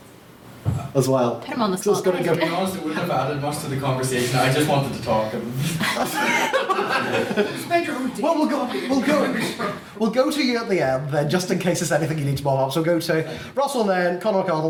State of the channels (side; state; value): both; identical; correlation 1.00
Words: as well? Put him on the So it's spot. going to To be honest, it wouldn't have added much to the conversation. I just wanted to talk. We'll go to you at the end then, just in case there's anything you need to bob up. So we'll go to Russell Nairn, Conor